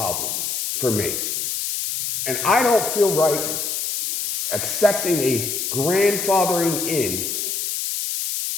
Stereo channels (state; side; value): noise; left; hiss, 2 dB below the sound